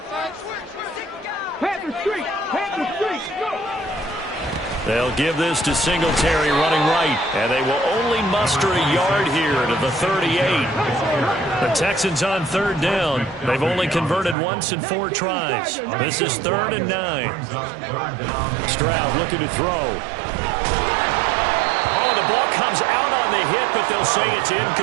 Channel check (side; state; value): left; drops out; at 14.4 s